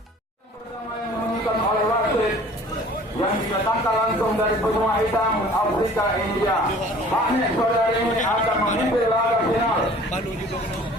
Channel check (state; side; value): normal; both; correlation 0.49